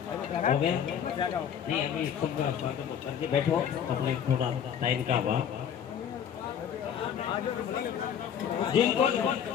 हो गया नहीं, अभी सब बैठो अपने थोड़ा टाइम का अभाव। जिनको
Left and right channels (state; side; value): quieter; right; 8.6 dB